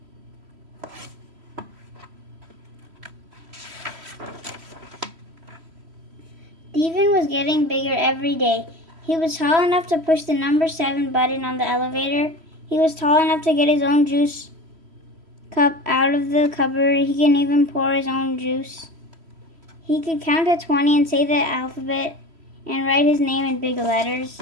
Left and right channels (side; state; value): left; late; 3.1 ms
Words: Stephen was getting bigger every day. He was tall enough to push the number 7 button on the elevator. He was tall enough to get his own juice cup out of the cupboard. He can even pour his own juice. He could count to 20 and say the alphabet and write his name in big letters.